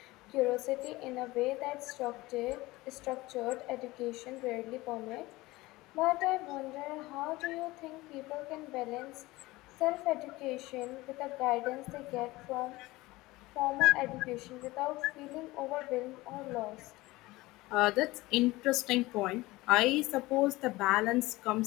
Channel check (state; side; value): quieter; right; 19.9 dB